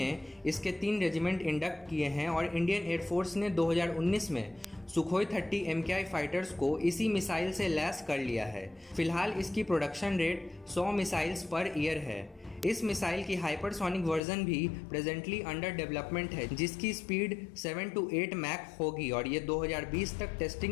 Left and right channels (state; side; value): drops out; right; at 14.2 s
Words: इसके 3 रेजिमेंट इंडक्ट किए हैं और इंडियन एयरफोर्स ने 2019 में सुखोई 30 MKI फाइटर्स को इसी मिसाइल से लैस कर लिया है। फिलहाल इसकी production rate 100 missiles per year है। इस मिसाइल की हाइपरसोनिक वर्जन भी प्रेजेंटली अंडर डेवलपमेंट है जिसकी स्पीड 7 to 8 मैक होगी और ये 2020 तक